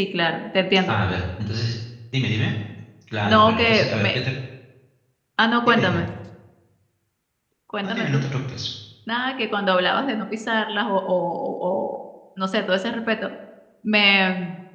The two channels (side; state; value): both; identical; correlation 1.00